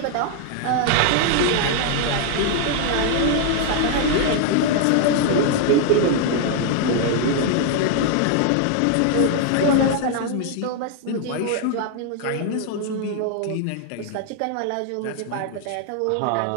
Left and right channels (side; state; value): both; different; correlation 0.00